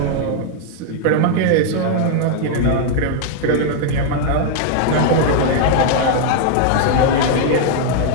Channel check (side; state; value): both; different; correlation 0.00